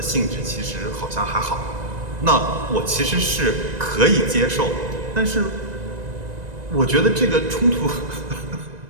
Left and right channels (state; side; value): late; left; 1.9 ms